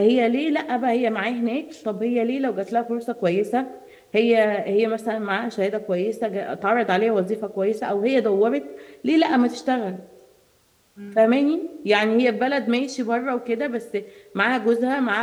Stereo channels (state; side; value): identical; both; correlation 1.00